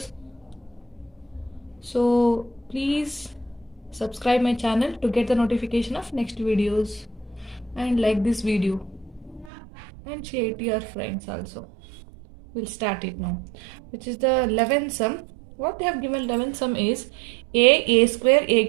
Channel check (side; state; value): left; drops out; at 9.5 s